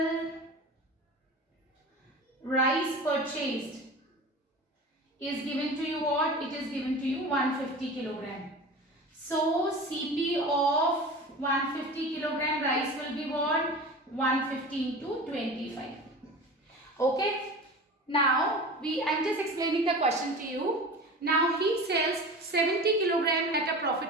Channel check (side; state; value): both; normal; correlation 0.34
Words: rice purchased is given to you what? It is given to you 150 kilogram. So CP of 150 kilogram rice will be what? 150 into 25. Okay. Now I'm just explaining the question to you. Now he sells 70 kilogram at a